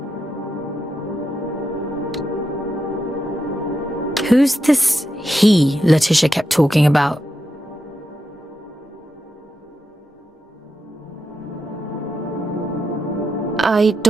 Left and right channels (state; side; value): normal; both; correlation 0.86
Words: Who's this he Letitia kept talking about? I